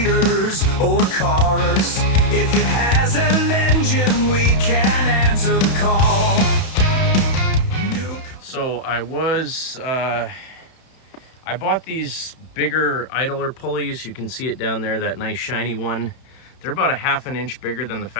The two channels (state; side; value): late; right; 31 ms